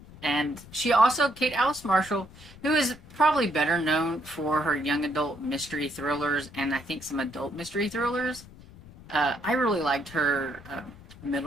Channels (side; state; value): left; noise; rumble, 20 dB below the sound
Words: And she also, Kate Alice Marshall, who is probably better known for her young adult mystery thrillers and I think some adult mystery thrillers. I really liked her